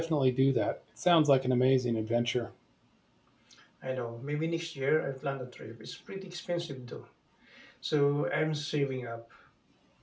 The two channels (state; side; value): identical; both; correlation 1.00